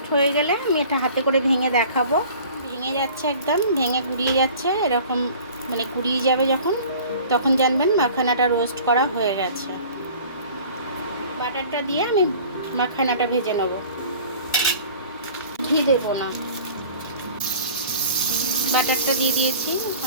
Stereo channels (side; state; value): both; inverted; correlation -0.45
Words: হয়ে গেলে আমি এটা হাতে করে ভেঙে দেখাবো। ভেঙে যাচ্ছে, একদম ভেঙে গুড়িয়ে যাচ্ছে, এরকম মানে গুড়িয়ে যাবে যখন, তখন জানবেন মাখানাটা রোস্ট করা হয়ে গেছে। বাটারটা দিয়ে আমি মাখানাটা ভেজে নেব, ঘি দেবো না। বাটারটা দিয়ে দিয়েছি,